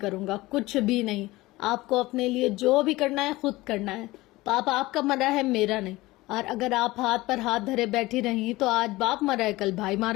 گا، کچھ بھی نہیں۔ آپ کو اپنے لیے جو بھی کرنا ہے خود کرنا ہے۔ پاپا آپ کا مرا ہے، میرا نہیں۔ اور اگر آپ ہاتھ پر ہاتھ دھرے بیٹھی رہی تو آج باپ مرا ہے، کل بھائی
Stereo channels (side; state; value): right; quieter; 19.5 dB